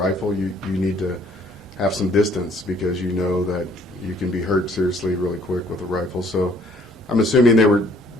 you need to have some distance because you know that you can be hurt seriously really quick with a rifle. So I'm assuming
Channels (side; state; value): both; normal; correlation 0.60